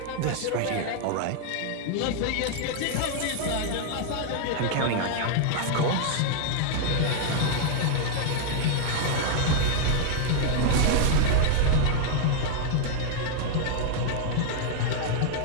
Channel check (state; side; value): different; both; correlation 0.00